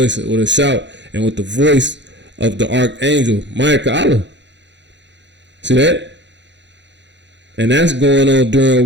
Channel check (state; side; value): late; left; 0.52 ms